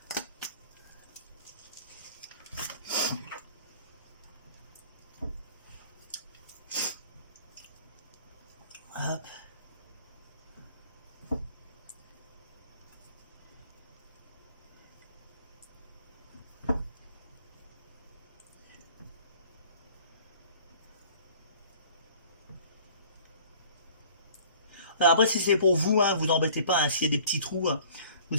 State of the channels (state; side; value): inverted; both; correlation -0.50